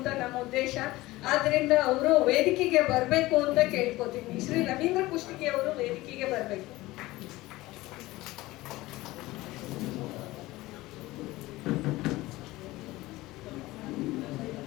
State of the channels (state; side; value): quieter; right; 18.8 dB